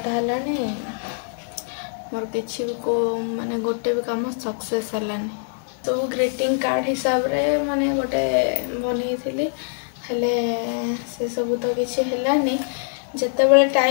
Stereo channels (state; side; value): silent; right; digital silence